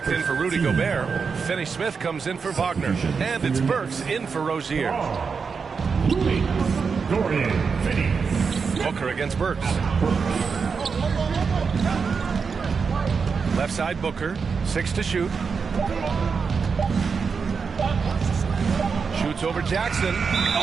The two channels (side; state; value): left; quieter; 5.5 dB